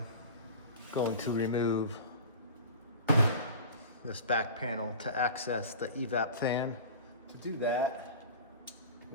Going to remove this back panel to access the evap fan. To do that,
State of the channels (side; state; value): both; inverted; correlation -0.36